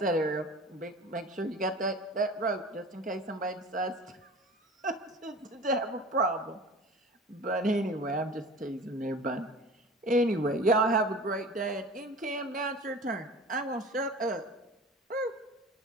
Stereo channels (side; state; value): both; normal; correlation 0.39